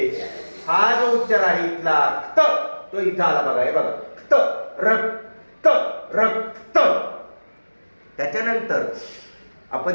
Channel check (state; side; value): inverted; both; correlation -1.00